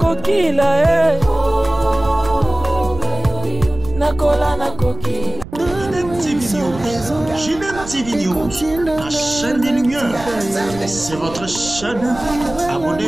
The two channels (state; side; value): noise; right; rumble, 14 dB below the sound